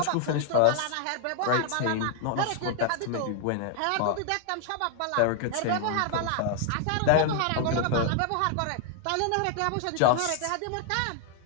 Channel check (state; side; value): different; both; correlation 0.00